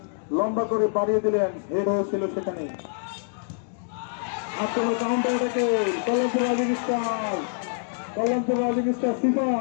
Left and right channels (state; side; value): silent; right; digital silence